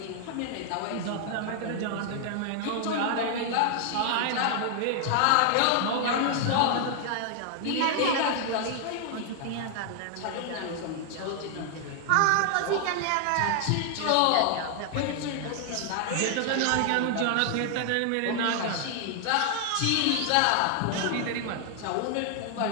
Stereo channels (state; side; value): different; both; correlation 0.00